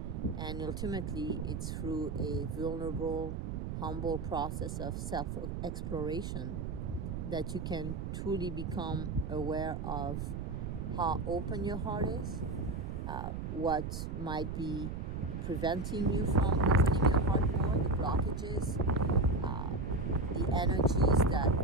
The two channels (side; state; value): right; noise; rumble, 4 dB below the sound